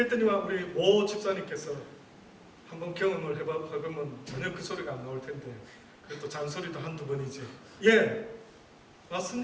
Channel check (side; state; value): both; identical; correlation 1.00